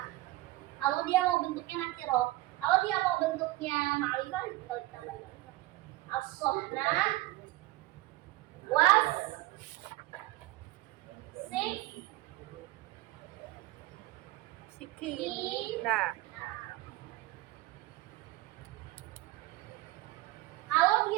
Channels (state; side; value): quieter; left; 18.3 dB